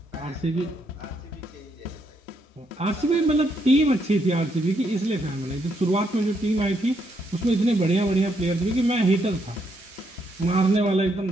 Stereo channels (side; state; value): both; normal; correlation 0.76